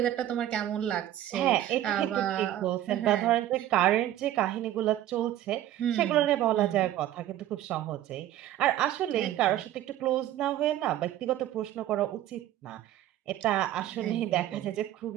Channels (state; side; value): quieter; left; 12.8 dB